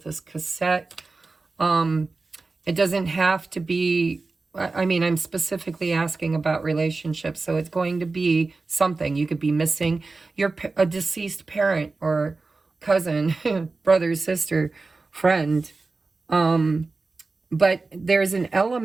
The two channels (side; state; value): left; quieter; 3.8 dB